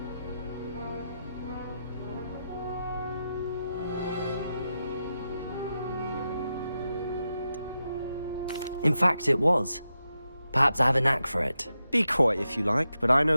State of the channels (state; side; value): inverted; both; correlation -0.88